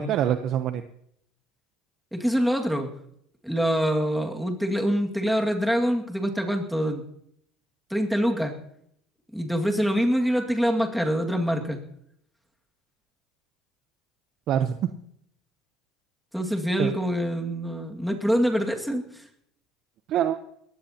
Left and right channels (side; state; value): both; normal; correlation 0.85